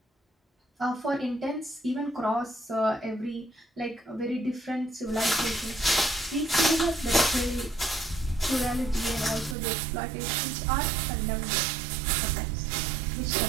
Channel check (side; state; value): left; drops out; at 9.6 s